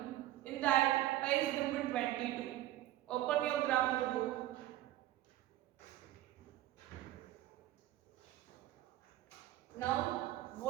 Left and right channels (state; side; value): quieter; left; 14.7 dB